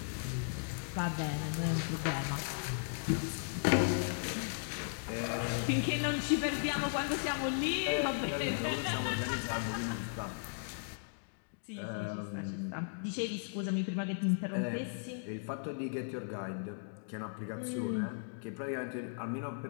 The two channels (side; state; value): right; silent; digital silence